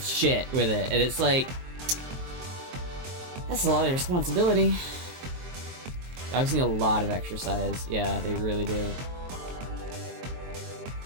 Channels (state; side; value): late; left; 23 ms